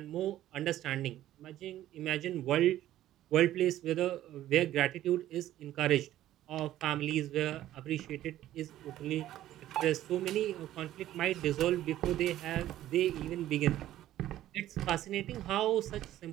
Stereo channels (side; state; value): left; quieter; 13.4 dB